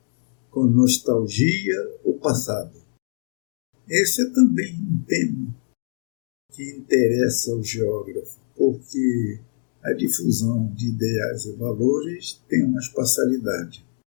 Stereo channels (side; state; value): right; silent; digital silence